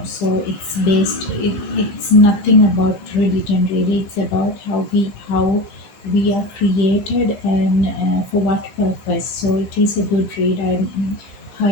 So it's nothing about religion really. It's about how we are created and for what purpose. So it is a good read. I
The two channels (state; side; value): late; right; 16 ms